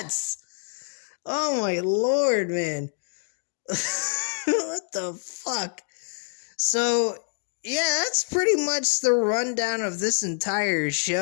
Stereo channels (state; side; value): silent; right; digital silence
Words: Oh my lord, man. What the fuck? So, yeah, that's pretty much the rundown of this entire